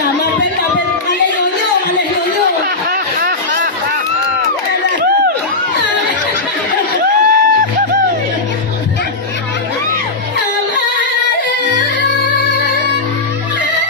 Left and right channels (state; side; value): quieter; right; 3.4 dB